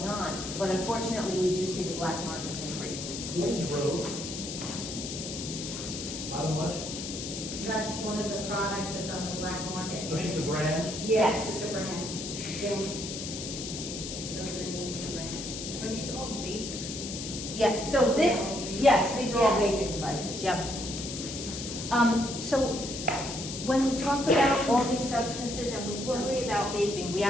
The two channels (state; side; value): noise; left; hiss, 7 dB below the sound